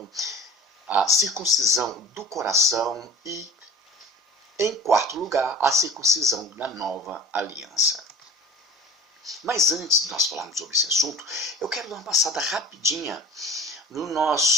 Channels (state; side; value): normal; both; correlation 0.40